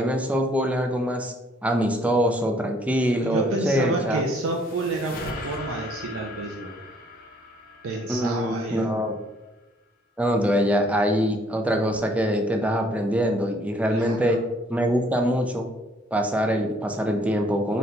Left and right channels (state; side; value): normal; both; correlation 0.62